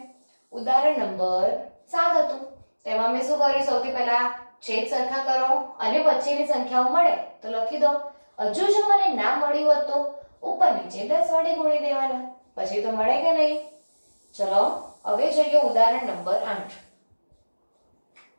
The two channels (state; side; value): inverted; both; correlation -1.00